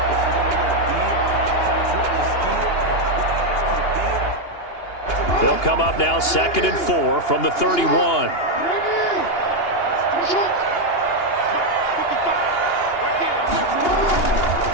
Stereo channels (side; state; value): right; late; 2.8 ms